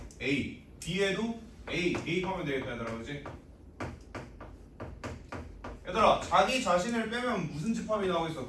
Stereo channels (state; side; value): identical; both; correlation 1.00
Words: A, B에도 A 대입하면 되겠다, 얘들아, 그렇지? 얘들아 자기 자신을 빼면 무슨 집합이 나오겠어?